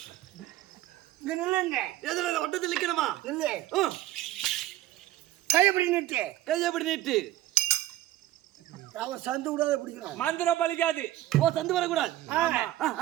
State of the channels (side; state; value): left; quieter; 14.9 dB